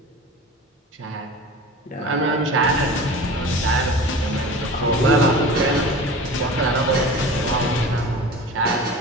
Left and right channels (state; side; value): normal; both; correlation 0.37